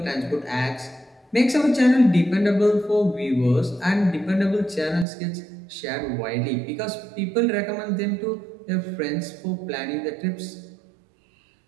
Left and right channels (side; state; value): left; drops out; at 5.1 s